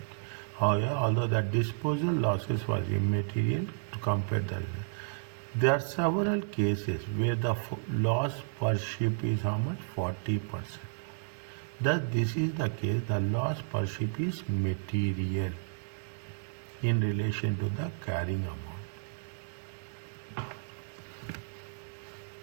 However, although the disposal losses was immaterial to compare the There are several cases where the loss per ship is how much? 40%. Thus, this is the case, the loss per ship is material in relation to the carrying amount.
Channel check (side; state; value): left; silent; digital silence